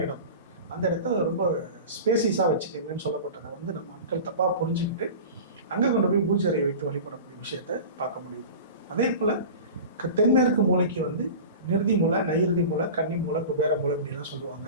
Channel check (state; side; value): inverted; both; correlation -0.34